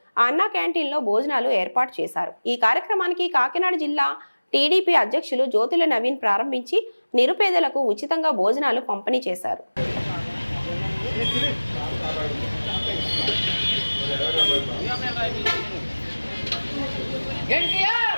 అన్నా క్యాంటీన్లో భోజనాలు ఏర్పాటు చేశారు. ఈ కార్యక్రమానికి కాకినాడ జిల్లా టీడీపీ అధ్యక్షులు జ్యోతుల నవీన్ ప్రారంభించి నిరుపేదలకు ఉచితంగా భోజనాలు పంపిణీ చేశారు.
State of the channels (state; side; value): inverted; both; correlation -1.00